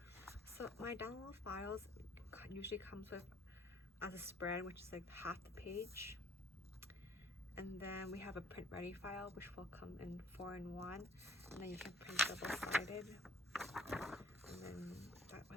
So my download files usually comes with as a spread, which is like half the page, and then we have a print ready file which will come in 4-in-1, and then you can print double-sided, and then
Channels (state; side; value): normal; both; correlation 0.56